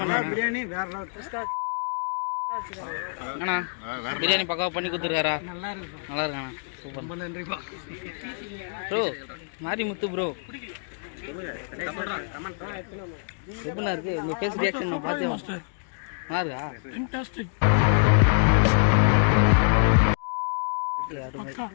பிரியாணி வேற லெவல். அண்ணா பிரியாணி பக்காவா பண்ணி கொடுத்துருக்காரா? நல்லா இருக்கு. நல்லா இருக்காண்ணா. சூப்பர். ரொம்ப நன்றிப்பா. ப்ரோ மாரி முத்து ப்ரோ எப்படிண்ணா இருக்கு உங்க ஃபேஸ் ரியாக்ஷன்? நான் பார்த்தேன். நல்லா இருக்கா? ஃபேண்டாஸ்டிக். ஓகே அருமை.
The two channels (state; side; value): silent; right; digital silence